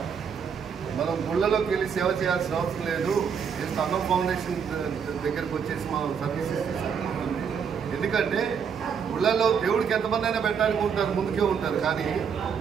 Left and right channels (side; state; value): left; quieter; 6.9 dB